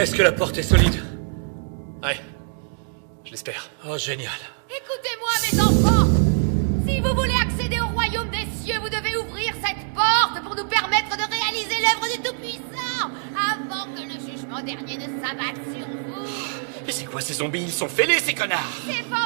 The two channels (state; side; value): silent; left; 63 dB below the other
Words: que la porte est solide? Ouais. Je l'espère. Oh, génial. Écoutez-moi, mes enfants. Si vous voulez accéder au royaume des cieux, vous devez ouvrir cette porte pour nous permettre de réaliser l'œuvre du Tout-Puissant avant que le jugement dernier ne s'abatte sur vous. Mais c'est quoi ces zombies? Ils sont fêlés, ces connards! C'est